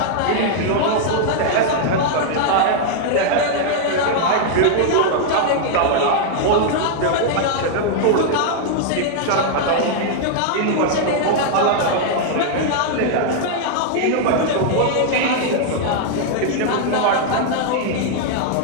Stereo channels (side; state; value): both; different; correlation 0.00